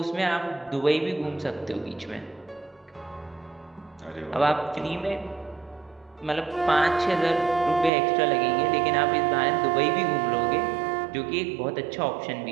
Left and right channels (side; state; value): left; drops out; at 7.9 s